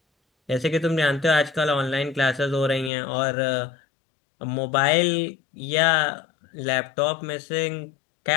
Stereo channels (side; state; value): right; drops out; at 2.9 s